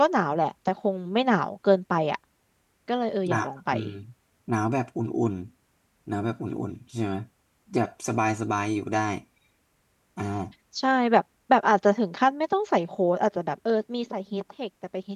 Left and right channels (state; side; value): identical; both; correlation 1.00